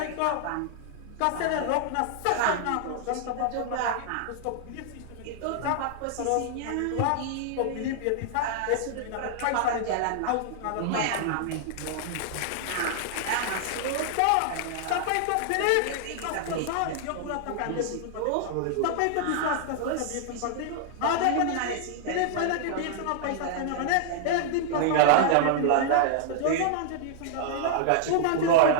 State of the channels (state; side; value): different; both; correlation -0.01